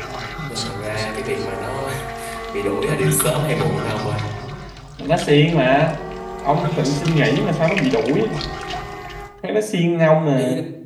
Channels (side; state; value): both; identical; correlation 1.00